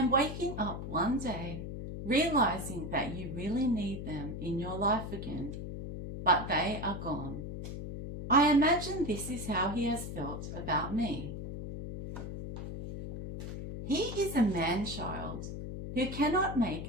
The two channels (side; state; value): left; noise; hum, 7 dB below the sound